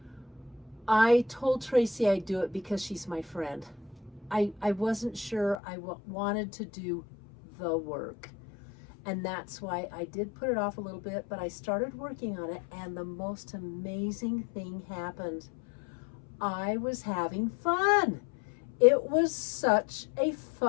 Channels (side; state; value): right; drops out; at 5.6 s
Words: I told Tracy I'd do it because she's my friend. I wasn't sure I wanted to do the work. And that's why I did put it off a little bit, but I started working on it and the most amazing thing happened. I was having fun. It was such a